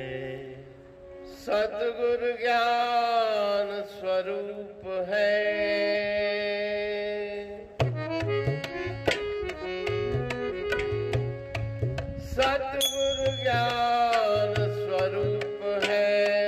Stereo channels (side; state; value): both; identical; correlation 1.00